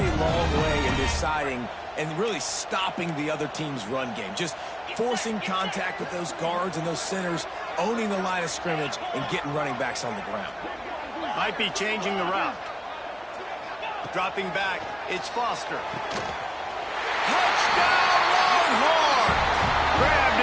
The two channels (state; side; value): identical; both; correlation 1.00